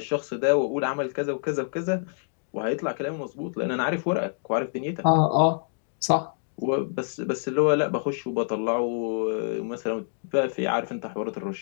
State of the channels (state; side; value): silent; right; digital silence